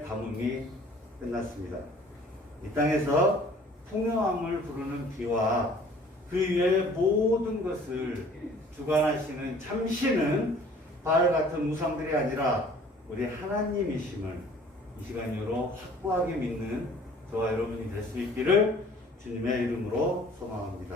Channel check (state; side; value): normal; both; correlation 0.52